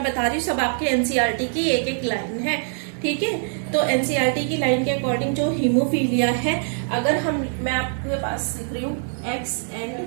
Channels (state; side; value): silent; left; digital silence